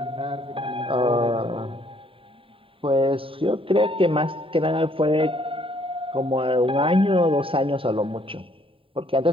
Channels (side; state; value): left; late; 0.26 ms